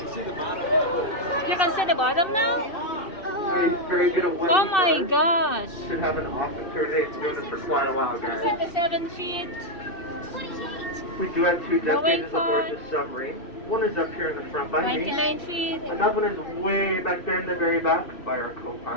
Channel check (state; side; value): late; right; 2.7 ms